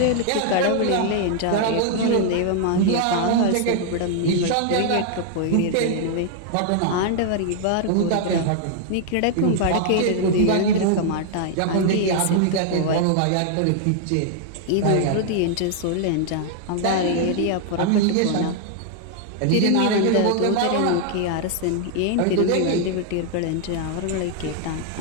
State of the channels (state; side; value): different; both; correlation 0.00